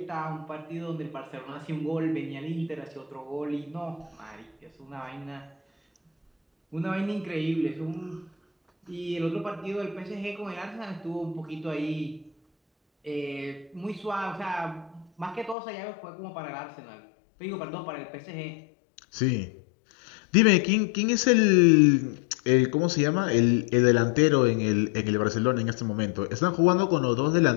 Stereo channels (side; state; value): right; drops out; at 15.6 s